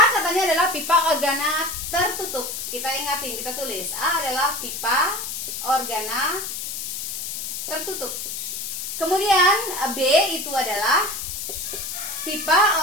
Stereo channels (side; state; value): left; noise; hiss, 6 dB below the sound